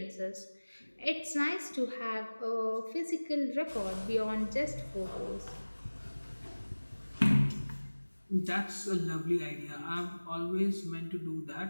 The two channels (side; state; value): both; inverted; correlation -1.00